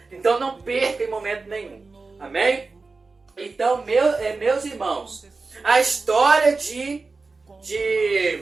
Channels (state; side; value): quieter; left; 3.9 dB